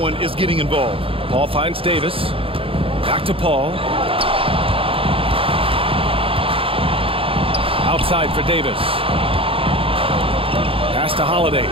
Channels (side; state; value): left; late; 0.27 ms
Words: is getting involved. Paul finds Davis. Back to Paul. Outside for Davis. Pass to Holiday.